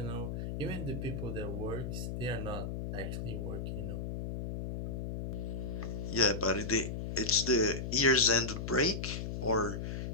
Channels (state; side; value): noise; left; hum, 4 dB below the sound